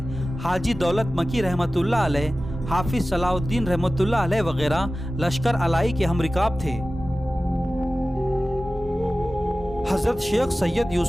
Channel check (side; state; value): both; normal; correlation 0.96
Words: हाजी दौलत मकी रहमतुल्लाह अलैह, हाफिज सलाउद्दीन रहमतुल्लाह अलैह वगैरह लश्कर अलाई के हमरिकाब थे। हज़रत शेख सैयद